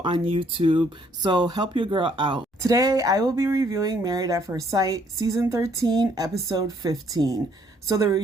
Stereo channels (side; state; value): both; normal; correlation 0.66